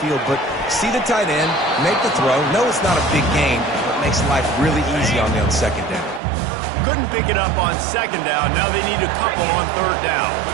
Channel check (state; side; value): drops out; left; at 6.2 s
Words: but see the tight end, make the throw. No, it's not a big game, but makes life really easy on me on 2nd down. Couldn't pick it up on 2nd down. Now they need a couple on 3rd down.